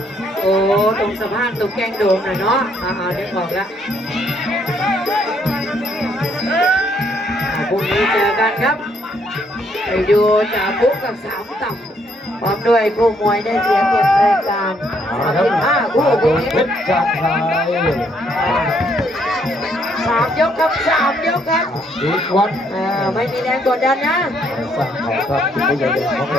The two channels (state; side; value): normal; both; correlation 0.70